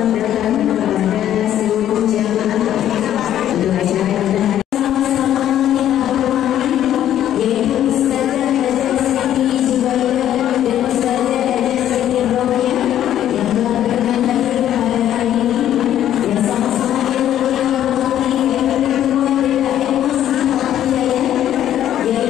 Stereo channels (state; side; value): quieter; right; 11.3 dB